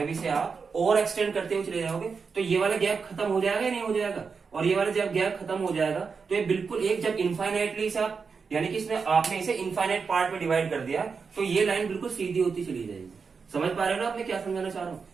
इसे आप और एक्सटेंड करते हुए चले जाओगे तो ये वाला गैप खत्म हो जाएगा या नहीं हो जाएगा, और ये वाला जब गैप खत्म हो जाएगा तो ये बिल्कुल एक, जब इनफाइनाइटली से आप, यानी कि इसमें आपने इसे इनफाइनाइट पार्ट में डिवाइड कर दिया, तो ये लाइन बिल्कुल सीधी होती चली जाएगी। समझ पा रहे हो ना आपने क्या समझाना चाह रहा हूं,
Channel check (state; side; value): quieter; left; 5.3 dB